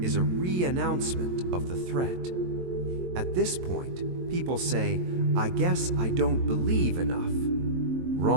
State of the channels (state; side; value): late; left; 22 ms